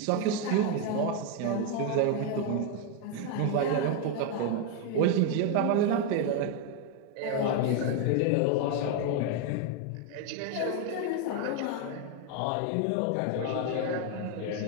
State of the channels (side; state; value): both; different; correlation 0.01